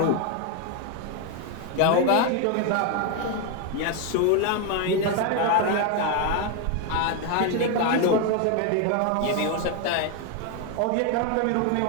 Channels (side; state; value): both; different; correlation 0.01